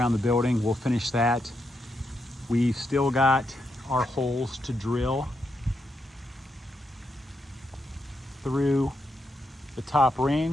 the building. We'll finish that. We've still got our holes to drill through the top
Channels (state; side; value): normal; both; correlation 0.82